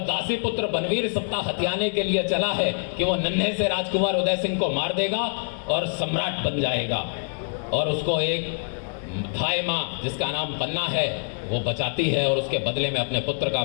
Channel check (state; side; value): silent; right; digital silence